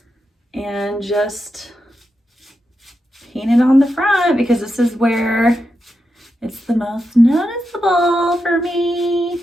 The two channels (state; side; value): normal; both; correlation 0.87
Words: and just paint it on the front because this is where it's the most noticeable for